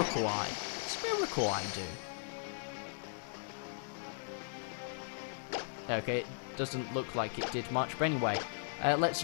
Eye. What's Miracle Eye do? Okay, doesn't look like it did much. But anyway, let's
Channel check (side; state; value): right; silent; digital silence